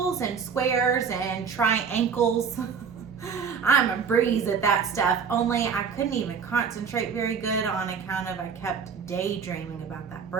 and squares and triangles. I'm a breeze at that stuff, only I couldn't even concentrate very good on account of I kept daydreaming about that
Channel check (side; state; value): left; quieter; 6.3 dB